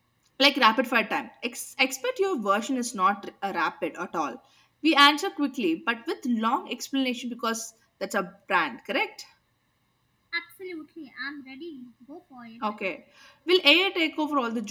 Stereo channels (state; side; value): identical; both; correlation 1.00